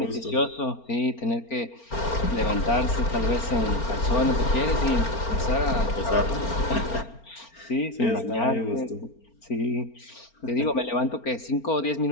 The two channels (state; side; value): late; right; 4.4 ms